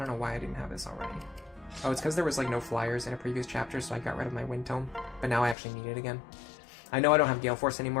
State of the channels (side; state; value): right; drops out; at 5.6 s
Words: know why I didn't have this already. Oh, it's because there was like no flyers in a previous chapter, so I got rid of my wind tome. But now I actually need it again. I know I don't have Gale Force